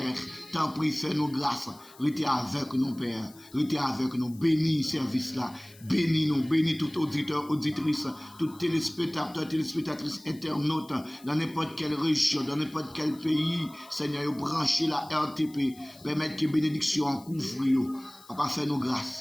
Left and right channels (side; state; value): left; noise; hiss, 23 dB below the sound